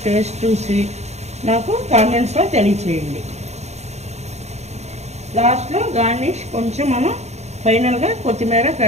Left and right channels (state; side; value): late; left; 0.32 ms